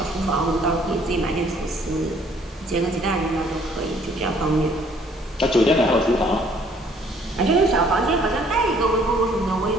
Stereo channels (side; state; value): both; normal; correlation 0.60